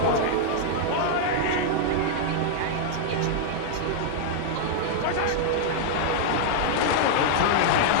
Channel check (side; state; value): both; different; correlation -0.01